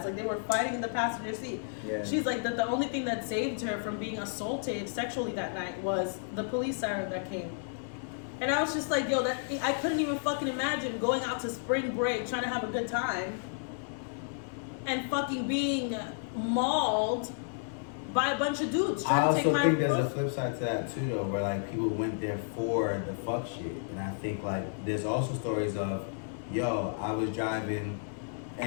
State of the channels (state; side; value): silent; right; digital silence